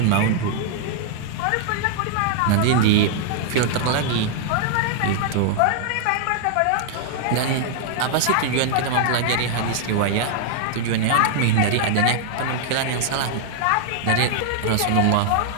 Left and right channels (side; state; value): both; different; correlation -0.01